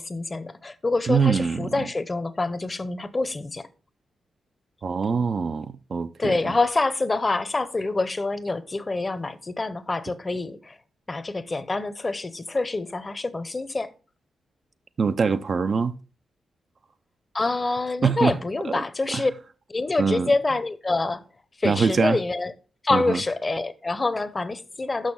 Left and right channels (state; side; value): normal; both; correlation 0.89